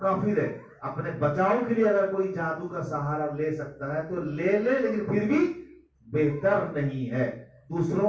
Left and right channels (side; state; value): both; identical; correlation 1.00